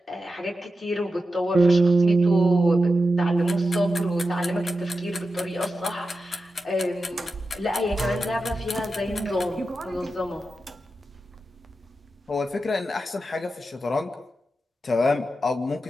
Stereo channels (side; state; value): both; normal; correlation 0.90